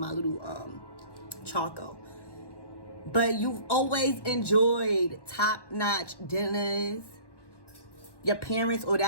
little charcoal. But you've always enjoyed top-notch dinners. Your parents, or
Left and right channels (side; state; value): right; late; 1.1 ms